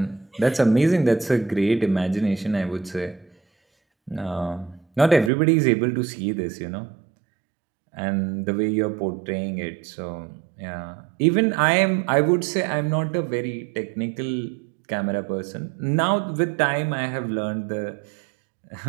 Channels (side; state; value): left; drops out; at 5.3 s